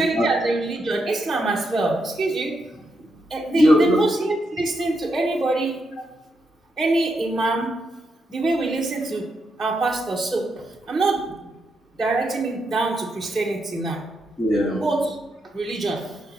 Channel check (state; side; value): normal; both; correlation 0.82